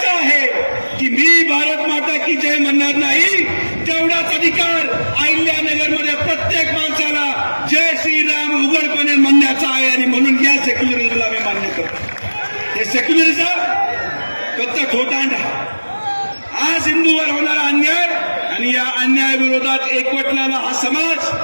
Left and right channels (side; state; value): both; inverted; correlation -1.00